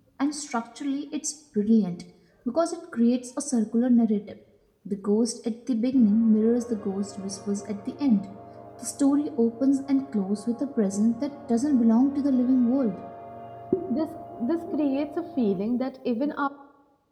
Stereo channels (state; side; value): identical; both; correlation 1.00